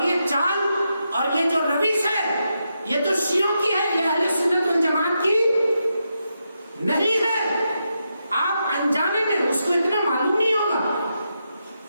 یہ چال اور یہ جو روش ہے یہ تو شیعوں کی ہے، یہ اہل سنت والجماعت کی نہیں ہے. آپ انجانے میں اس کو اتنا معلوم نہیں ہوگا.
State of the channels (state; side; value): inverted; both; correlation -0.85